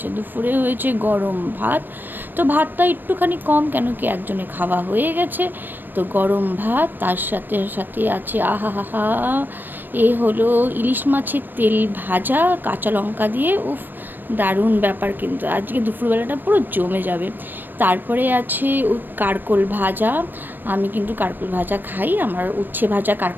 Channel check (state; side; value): late; left; 0.093 ms